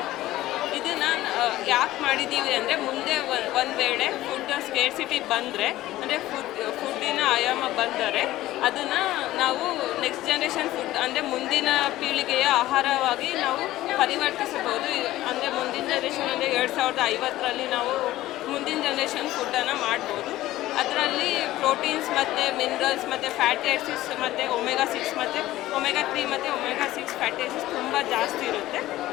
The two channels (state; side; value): quieter; right; 15.7 dB